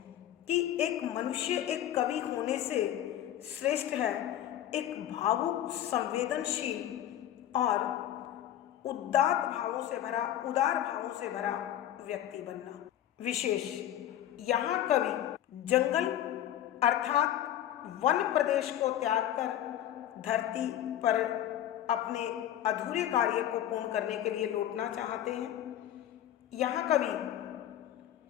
कि एक मनुष्य एक कवि होने से श्रेष्ठ है एक भावुक, संवेदनशील और उदार भावों से भरा व्यक्ति बनना। विशेष यहाँ कवि जंगल अर्थात वन प्रदेश को त्याग कर धरती पर अपने अधूरे कार्य को पूर्ण करने के लिए लौटना चाहते हैं। यहाँ कवि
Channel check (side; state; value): right; quieter; 11.8 dB